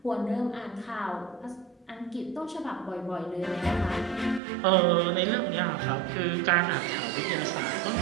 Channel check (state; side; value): drops out; left; at 4.4 s